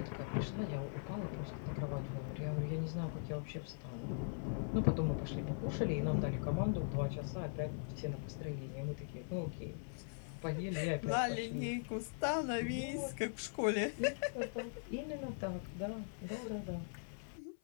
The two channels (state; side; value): silent; right; 50 dB below the other